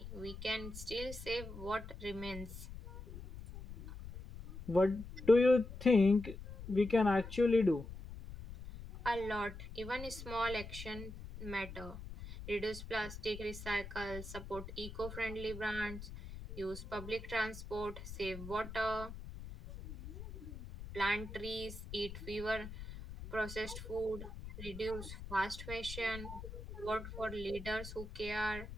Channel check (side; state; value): left; noise; rumble, 11 dB below the sound